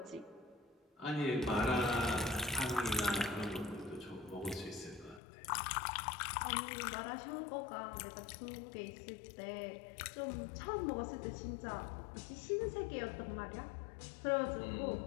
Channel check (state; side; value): drops out; right; at 5.2 s